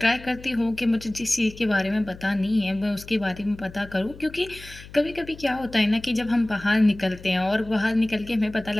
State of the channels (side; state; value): left; noise; hum, 18 dB below the sound